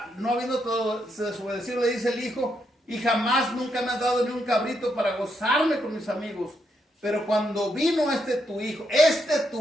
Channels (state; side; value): normal; both; correlation 0.79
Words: no habiendo todo desobedecido, le dice el hijo, y jamás nunca me has dado ni un cabrito para gozarme con mis amigos. Pero cuando vino este tu hijo,